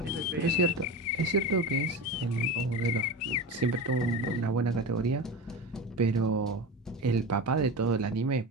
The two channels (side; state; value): both; normal; correlation 0.26